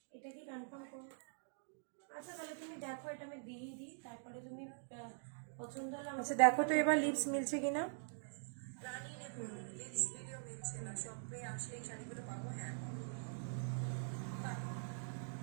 এটা কি কনফার্ম করো? আচ্ছা তাহলে তুমি দেখো, এটা আমি দিয়ে দিই, তারপরে তুমি পছন্দ হলে আচ্ছা দেখো তো এবার লিপস মিলছে কিনা। রানী নেবো, লিপস ভিডিও মিলছে না, শপে আসলে এই শাড়িগুলো পাবো? হ্যাঁ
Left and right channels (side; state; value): left; silent; digital silence